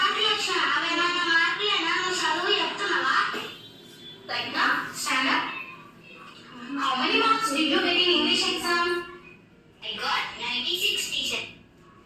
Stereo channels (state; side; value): identical; both; correlation 1.00